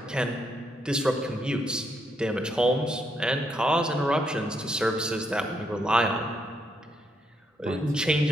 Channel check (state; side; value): normal; both; correlation 0.77